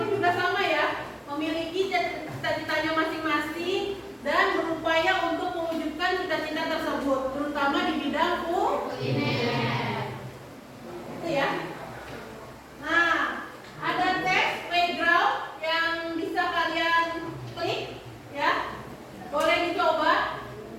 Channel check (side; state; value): both; identical; correlation 1.00